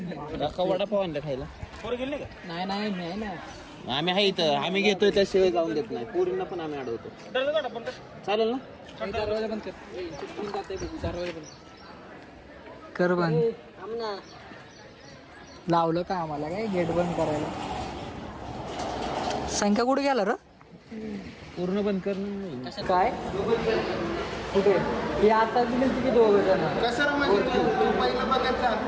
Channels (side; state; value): both; identical; correlation 1.00